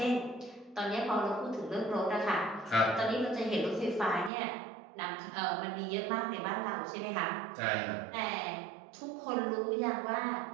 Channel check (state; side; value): drops out; left; at 4.3 s